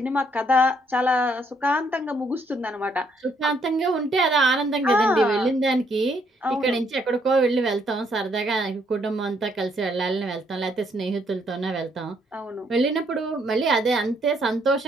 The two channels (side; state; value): both; normal; correlation 0.71